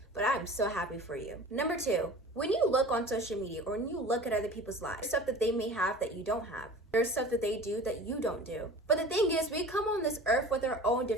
but I'm so happy for you. Number two, when you look on social media or when you look at other people's lives, stuff that they may have that you don't have. There's stuff that they do that you don't do. But the thing is, we come on this earth with our own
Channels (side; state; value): both; normal; correlation 0.40